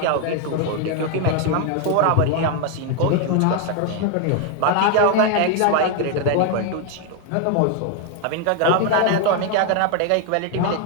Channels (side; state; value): both; different; correlation 0.01